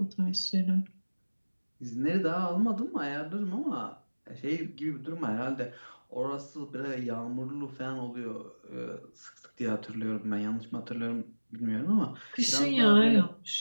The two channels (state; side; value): inverted; both; correlation -1.00